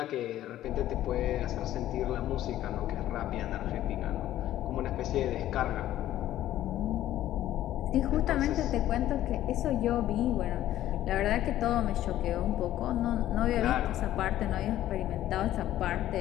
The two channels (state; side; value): quieter; right; 13.2 dB